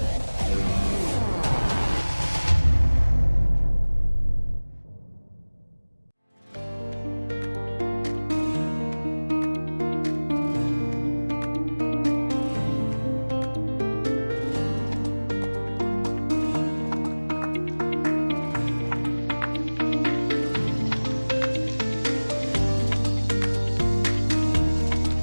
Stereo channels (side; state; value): both; inverted; correlation -1.00